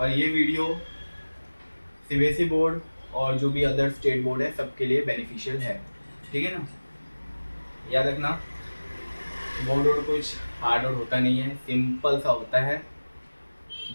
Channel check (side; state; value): both; inverted; correlation -1.00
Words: ये वीडियो सीबीएसई बोर्ड और जो भी अदर स्टेट बोर्ड है सबके लिए बेनिफिशियल है, ठीक है ना। याद रखना बोर्ड और कुछ हार्ड और होता नहीं है, सिंपल सा होता है,